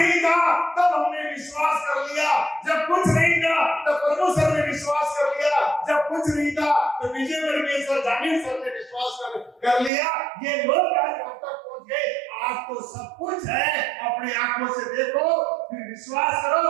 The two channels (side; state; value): left; drops out; at 9.9 s